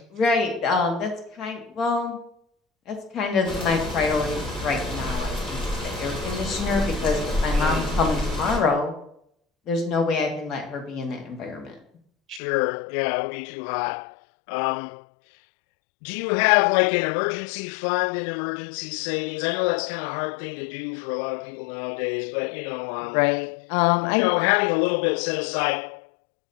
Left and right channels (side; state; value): right; drops out; at 12.4 s